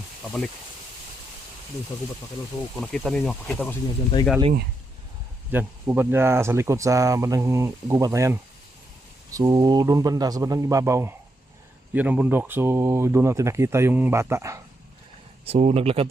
pabalik doon sa gubat mga kaidol. So kung nakita ninyo, pakita ko sa inyo, dyan tayo galing, dyan gubat niya sa likod sa bandang gubat na yan. So doon banda sa bandang ibabaw, yun ang bundok. So doon natin nakita yung bata. So naglakad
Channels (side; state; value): both; normal; correlation 0.82